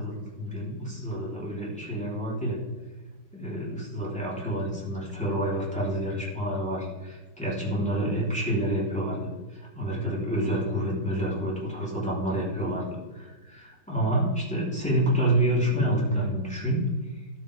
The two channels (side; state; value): both; normal; correlation -0.04